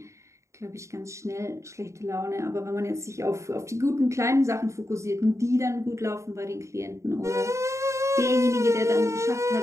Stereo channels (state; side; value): late; left; 0.14 ms